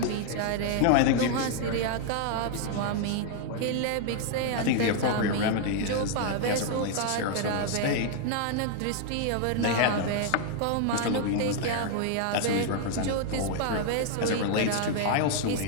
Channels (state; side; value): different; both; correlation 0.00